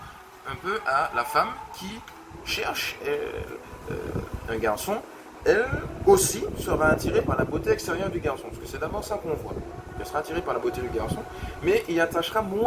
un peu à la femme qui cherche un garçon. Elle aussi sera attirée par la beauté extérieure du garçon, parce que c'est d'abord ça qu'on voit. Elle sera attirée par la beauté du garçon, mais il attachera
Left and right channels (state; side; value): identical; both; correlation 1.00